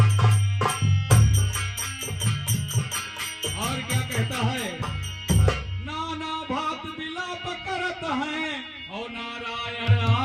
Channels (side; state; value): both; identical; correlation 1.00